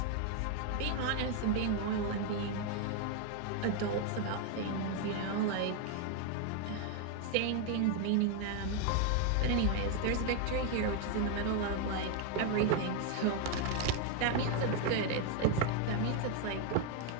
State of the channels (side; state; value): both; different; correlation 0.01